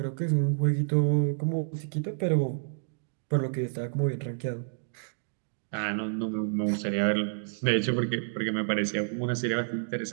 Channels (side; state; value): left; silent; digital silence